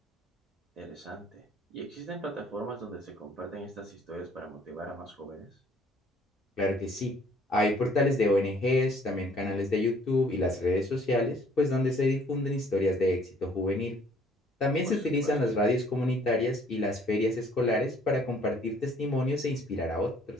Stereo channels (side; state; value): both; normal; correlation 0.59